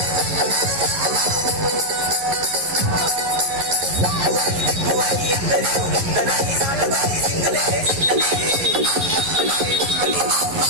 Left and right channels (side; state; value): left; late; 11 ms